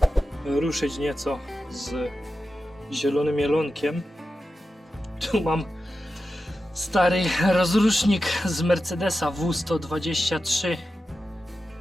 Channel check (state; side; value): normal; both; correlation 0.91